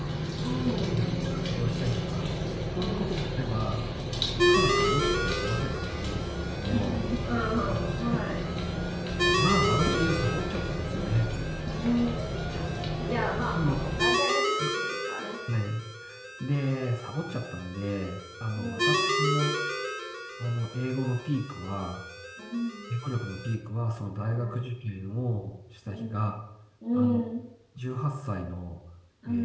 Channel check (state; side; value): identical; both; correlation 1.00